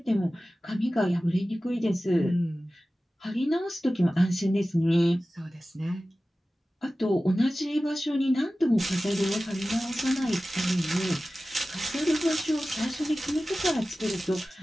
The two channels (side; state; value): both; normal; correlation 0.96